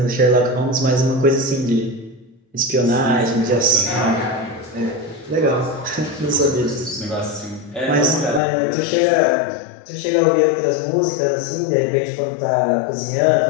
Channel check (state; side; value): drops out; right; at 8.4 s